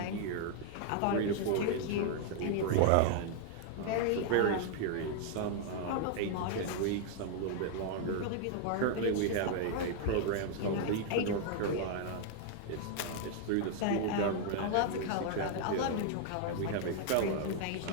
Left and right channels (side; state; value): both; different; correlation 0.00